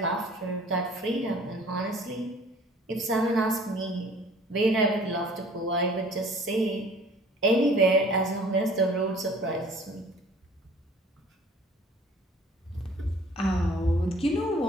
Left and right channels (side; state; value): both; normal; correlation 0.51